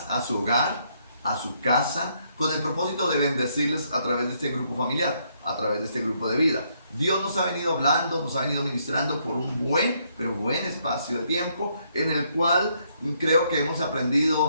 a su hogar, a su casa, con el propósito de bendecirles a través de este grupo familiar, a través de este grupo de vida. Dios nos ha venido hablando, nos ha venido ministrando por un buen espacio de tiempo, en el cual creo que hemos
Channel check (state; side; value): inverted; both; correlation -0.72